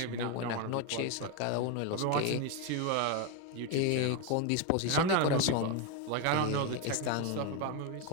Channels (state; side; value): different; both; correlation 0.02